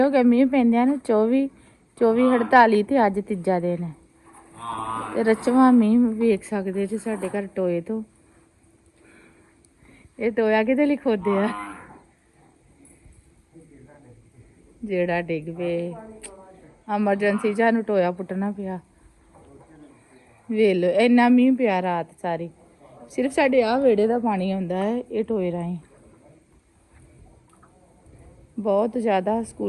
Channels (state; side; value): identical; both; correlation 1.00